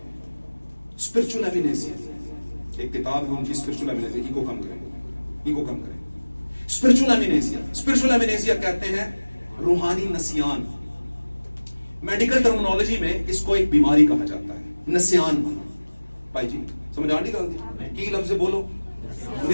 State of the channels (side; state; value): both; inverted; correlation -1.00